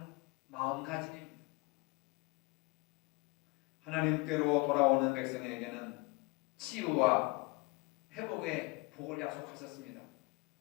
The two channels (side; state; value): right; quieter; 26.3 dB